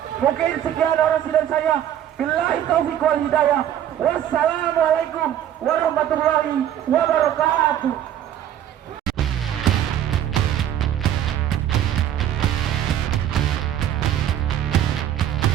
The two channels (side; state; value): left; quieter; 10.8 dB